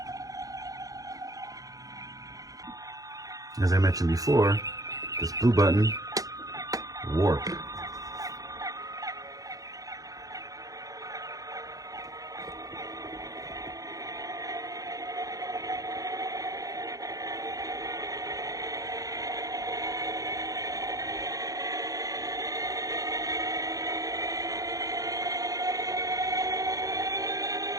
As I mentioned before, this blue button, warp.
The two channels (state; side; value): late; left; 0.17 ms